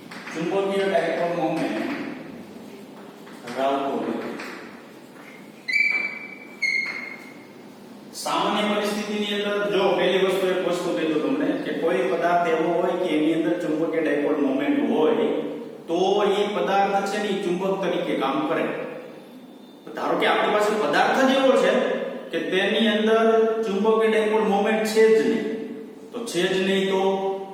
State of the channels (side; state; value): both; identical; correlation 1.00